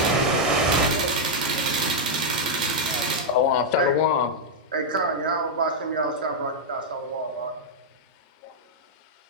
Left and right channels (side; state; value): both; normal; correlation -0.03